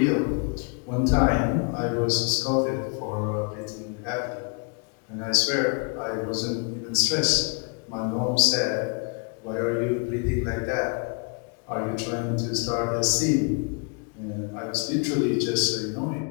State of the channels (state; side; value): quieter; right; 34.1 dB